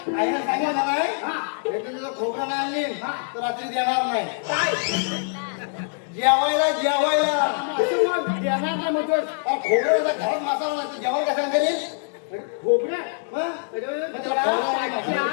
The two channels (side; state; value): right; silent; 62 dB below the other